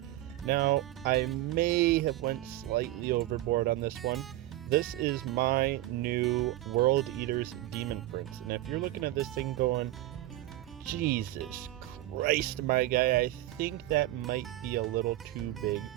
Now, I may have went slightly overboard on this one. This is my new World Eater's Demon Prince, and if you're looking at this thing going, Jesus Christ, my guy, I think that might be a little too big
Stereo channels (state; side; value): quieter; left; 15.7 dB